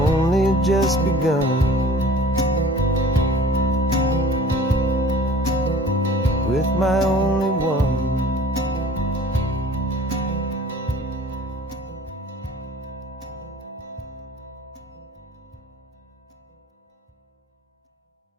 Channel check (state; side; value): normal; both; correlation 0.46